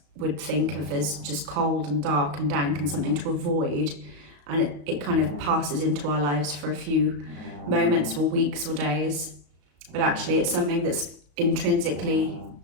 would think of as just cold and dark and dank and something to avoid, and it kind of passes into our lives for a few moments or weeks or days, but actually it's something that's intrinsically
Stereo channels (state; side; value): late; left; 34 ms